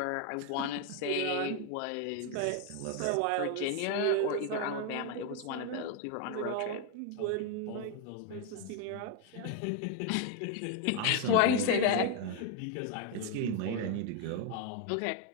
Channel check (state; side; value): different; both; correlation 0.01